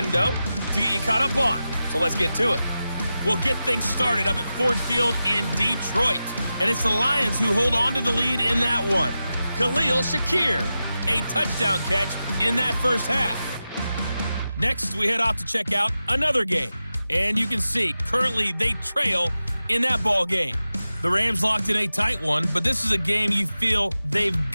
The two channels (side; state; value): both; inverted; correlation -0.92